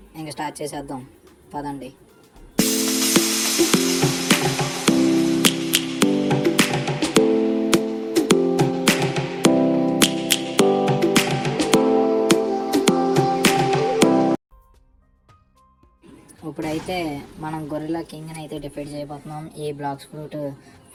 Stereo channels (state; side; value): identical; both; correlation 1.00